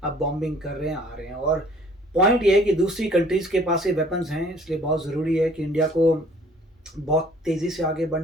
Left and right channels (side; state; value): both; normal; correlation 0.55